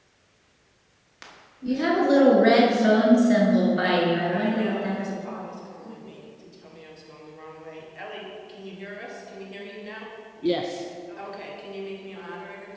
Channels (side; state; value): both; identical; correlation 1.00